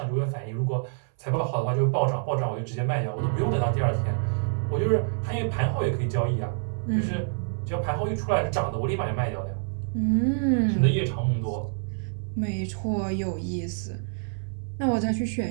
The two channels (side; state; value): left; silent; 59 dB below the other